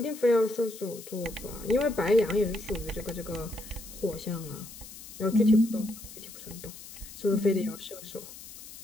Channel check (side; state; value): left; noise; hiss, 15 dB below the sound